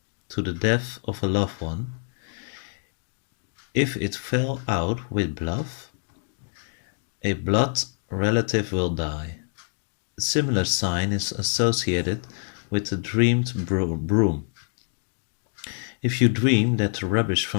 to the death of a loved one, if it fell out with blood, a blood relative will die. A similar sign is associated with the dreamed broom. If you dream that the rubbish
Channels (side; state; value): right; silent; digital silence